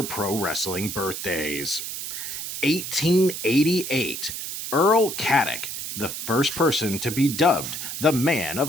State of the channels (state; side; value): noise; right; hiss, 6 dB below the sound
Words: pro wrestling birthdays. 1888, Earl Caddock, the first person to be dubbed the Man of